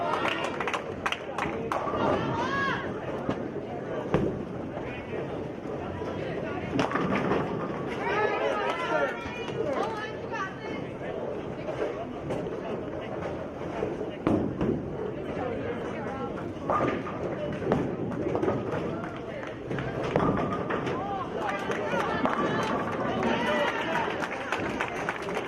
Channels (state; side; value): identical; both; correlation 1.00